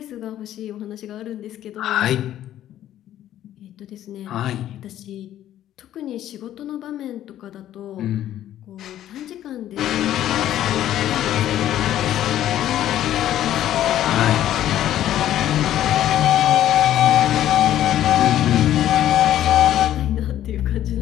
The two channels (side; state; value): right; quieter; 12.2 dB